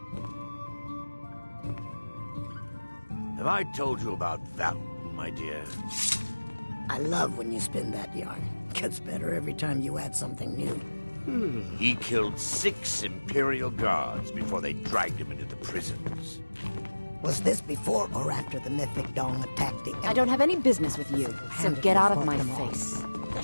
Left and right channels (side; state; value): both; inverted; correlation -1.00